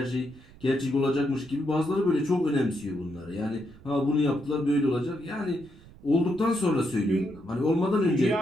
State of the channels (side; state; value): right; noise; rumble, 22 dB below the sound